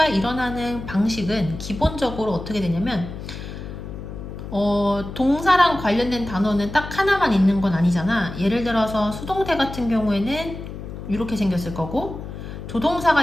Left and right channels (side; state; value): left; noise; hum, 10 dB below the sound